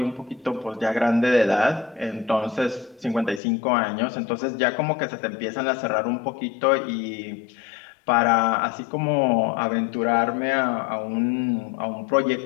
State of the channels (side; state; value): right; drops out; at 3.4 s